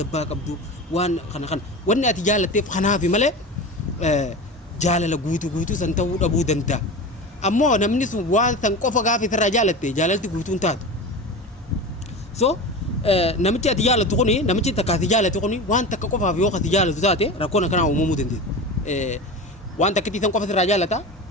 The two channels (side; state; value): both; normal; correlation 0.28